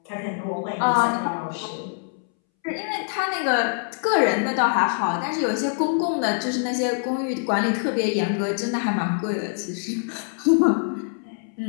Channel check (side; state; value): right; silent; 62 dB below the other